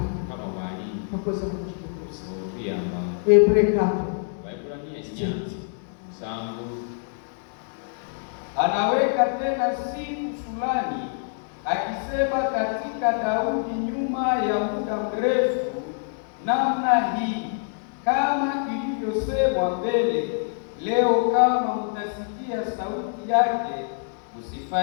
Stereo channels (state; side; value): silent; right; digital silence